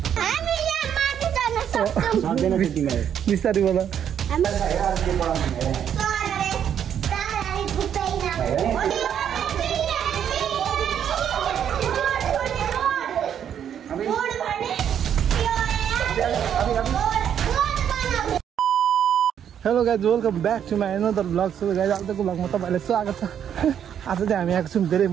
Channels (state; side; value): quieter; left; 9.0 dB